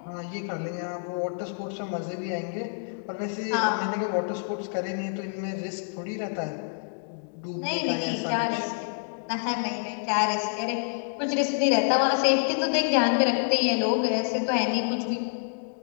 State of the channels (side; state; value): right; silent; digital silence